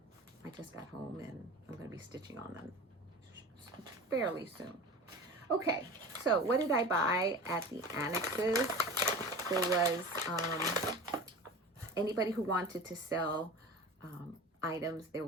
I just got home and I'm going to be stitching on them fairly soon. Okay, so what did I buy at the annexes? There was anybody who wanted to sell items. There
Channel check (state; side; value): normal; both; correlation 0.35